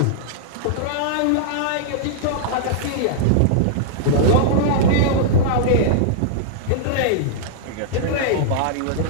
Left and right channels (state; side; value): different; both; correlation -0.02